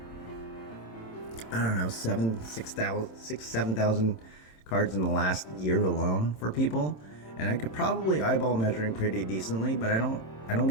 I don't know, 7,000 cards in the last year alone for people, and I could probably eyeball measuring pretty decently, but I don't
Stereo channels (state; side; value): late; right; 27 ms